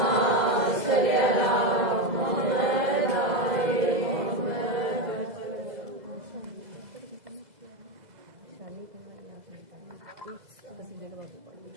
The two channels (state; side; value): late; left; 2.0 ms